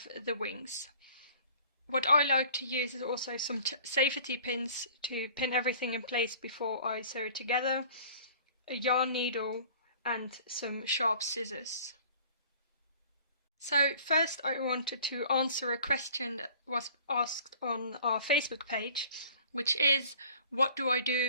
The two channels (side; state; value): both; inverted; correlation -0.49